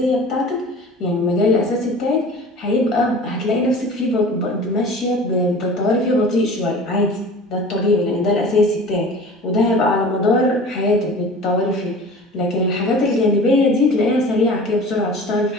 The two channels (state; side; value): normal; both; correlation 0.41